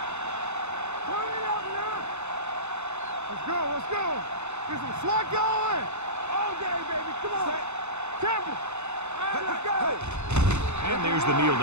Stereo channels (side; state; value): left; late; 0.82 ms